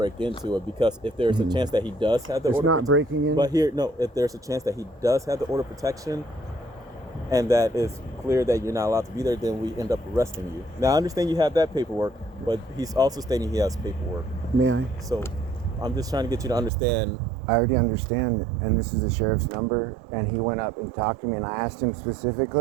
into it, because if there's a chance that he does have the It's order not breaking in. but here, no, if there's a chance that he does have the order protection and that is clear that you're not allowed to be there, then we end up arresting you. Now, I understand you have that paperwork, but he's also stating he has paperwork. May I? So I'm just trying to get you to understand. I already understand, and this is the sheriff's number, and he went up and talked to me, and I asked him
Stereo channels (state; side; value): drops out; left; at 16.7 s